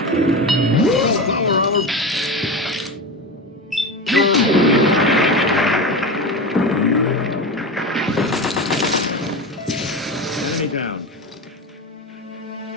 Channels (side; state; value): both; normal; correlation 0.24